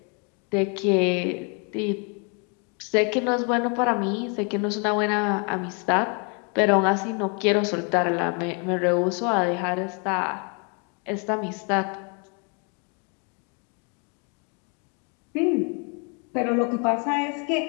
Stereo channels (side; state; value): right; quieter; 36.2 dB